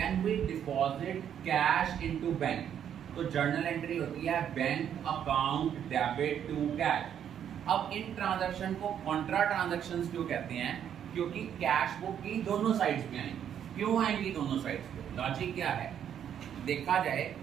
we deposit cash into bank, तो journal entry होती है bank account debit to cash. अब इन transaction को contra transactions क्यों कहते हैं? क्योंकि कैश बुक की दोनों साइड्स पे आएंगी. क्यों आएंगी दोनों साइड्स पे? लॉजिक क्या है? देखा जाए,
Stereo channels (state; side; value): quieter; left; 9.2 dB